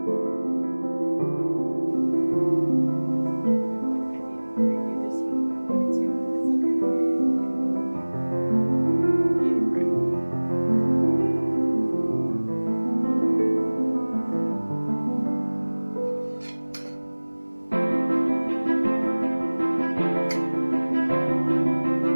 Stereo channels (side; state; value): both; inverted; correlation -1.00